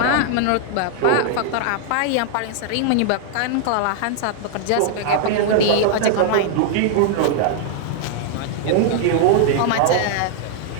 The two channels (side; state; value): both; different; correlation -0.01